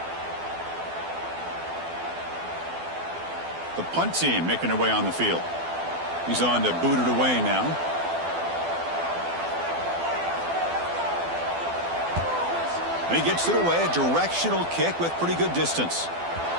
The punt team making their way on the field. He's on to boot it away now. And he gets it away, a directional kick with pretty good distance.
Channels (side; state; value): left; late; 12 ms